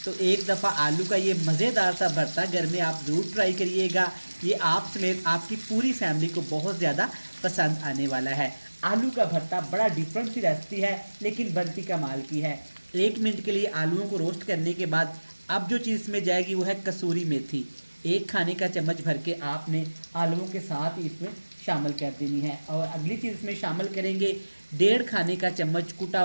तो एक दफ़ा आलू का ये मज़ेदार सा भरता घर में आप ज़रूर ट्राई करिएगा। ये आप समेत आपकी पूरी फैमिली को बहुत ज़्यादा पसंद आने वाला है। आलू का भरता बड़ा डिफरेंट सी रेसिपी है, लेकिन बनती कमाल की है। 1 मिनट के लिए आलूओं को रोस्ट करने के बाद अब जो चीज़ इसमें जाएगी वो है कसूरी मेथी। 1 खाने का चम्मच भर के आपने आलूओं के साथ ही इसमें शामिल कर देनी है। और अगली चीज़ इसमें शामिल करेंगे 1.5 खाने का चम्मच कुटा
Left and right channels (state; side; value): inverted; both; correlation -1.00